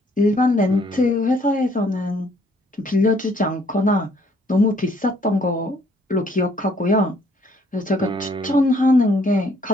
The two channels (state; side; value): normal; both; correlation 0.64